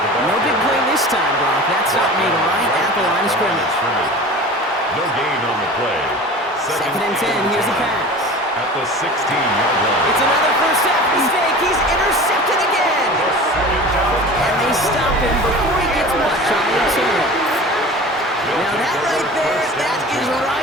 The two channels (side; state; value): both; normal; correlation 0.37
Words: No big play this time, Brock. That stop made right at the line of scrimmage. No gain on the play. Second and 10, here's the pass. At the 16-yard line. It's another first half mistake. He's intercepted again. And they stop him before he gets much on the return. Now that right there, that is